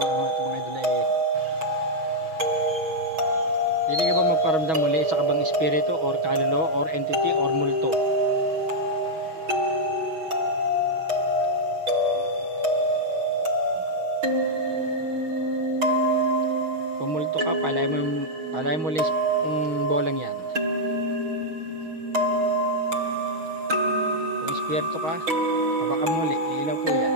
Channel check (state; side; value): late; left; 6.2 ms